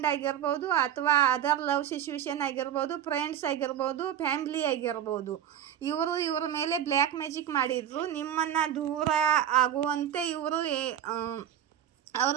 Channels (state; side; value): quieter; left; 10.3 dB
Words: ಆಗಿರ್ಬೋದು, ಅಥವಾ ಅದರ್ ಲವ್ ಸಿಚುವೇಶನ್ ಆಗಿರ್ಬೋದು, ಫ್ರೆಂಡ್ಸ್ ಆಗಿರ್ಬೋದು, ಫ್ಯಾಮ್ಲಿ ಆಗಿರ್ಬೋದು. ಇವರ ಮೇಲೆ ಬ್ಲ್ಯಾಕ್ ಮ್ಯಾಜಿಕ್ ಮಾಡಿದ್ರು. ನಿಮ್ಮನ್ನು ದೂರ ಆಗುವಂತೆ ಇವರು ಅವ್ರ